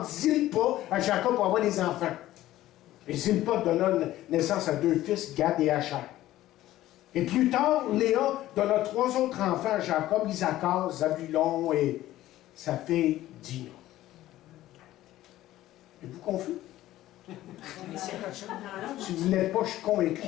Zilpa à Jacob pour avoir des enfants. Et Zilpa donna naissance à 2 fils, Gad et Asher. Et plus tard, Léa donna 3 autres enfants à Jacob, Isaacar, Zabulon et sa fille Dina. Êtes-vous confus? Si vous ne l'êtes pas, je suis convaincu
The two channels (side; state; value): right; quieter; 14.8 dB